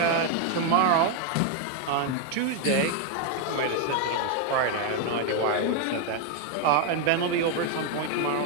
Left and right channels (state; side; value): different; both; correlation 0.01